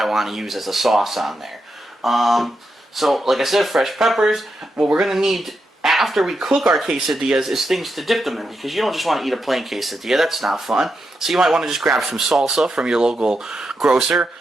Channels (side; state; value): both; normal; correlation 0.85